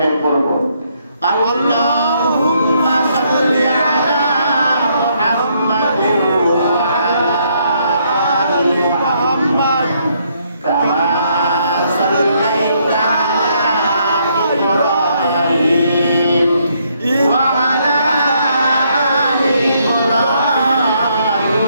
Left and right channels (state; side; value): inverted; both; correlation -0.72